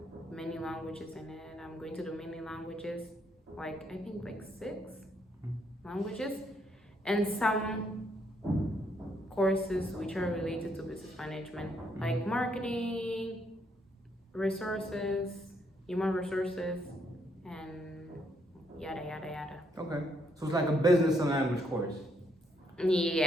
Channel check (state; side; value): normal; both; correlation 0.73